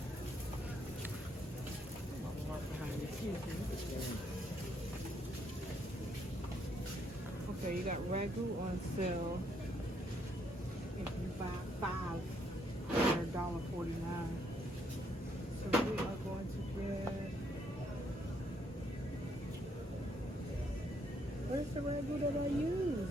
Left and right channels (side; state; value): both; normal; correlation 0.72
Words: Okay, you got Ragu on sale. If you buy 5, they're $1.49. So we are going to get. Where's the Ragu that I use?